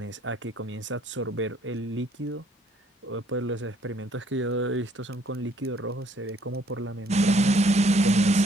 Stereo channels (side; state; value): both; normal; correlation 0.64